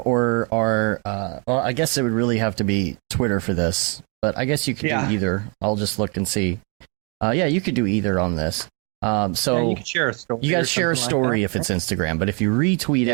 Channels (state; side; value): quieter; left; 34.4 dB